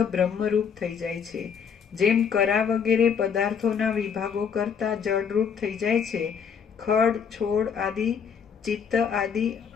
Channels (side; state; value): right; quieter; 6.9 dB